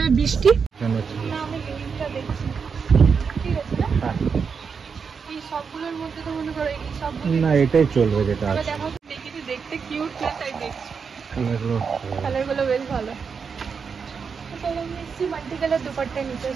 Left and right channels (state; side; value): quieter; left; 5.9 dB